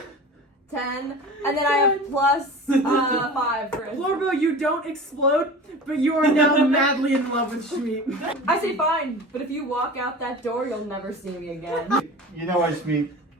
10. And then I have plus 5 for Florbo, you don't explode, but you are now madly in love with Shmeep. I say fine, but if you walk out that door, you'll never see me again. You know what, Shmeep?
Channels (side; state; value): both; normal; correlation 0.36